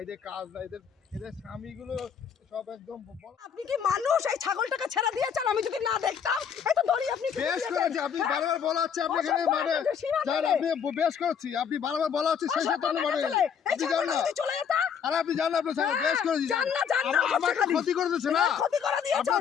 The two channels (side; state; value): right; quieter; 7.4 dB